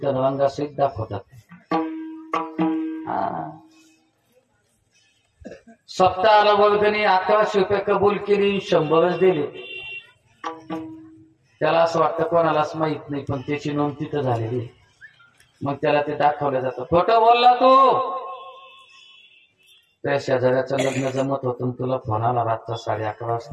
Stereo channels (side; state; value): both; identical; correlation 1.00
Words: रंगासहित दाखवतात. सप्ताहाला वर्गणी 1100 रुपये कबूल केली, 100च दिले. त्याला असं वाटतं कोणालाच माहित नाही, पण त्याची नोंद तिथं झालेली. मग त्याला ते दाखवलं जातं. खोटं बोलला तू. त्या शेजाऱ्याचं लग्न जमत होतं, तुला फोन आला रातचा 11:30